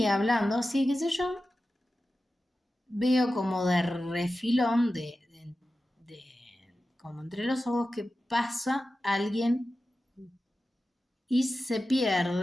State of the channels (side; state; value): both; normal; correlation 0.93